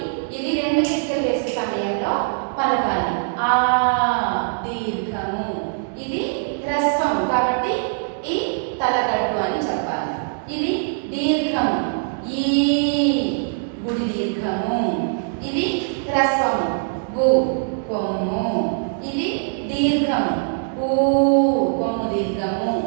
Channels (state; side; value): silent; left; digital silence